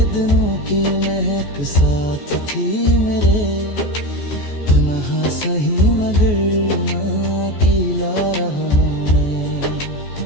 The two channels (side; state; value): right; late; 14 ms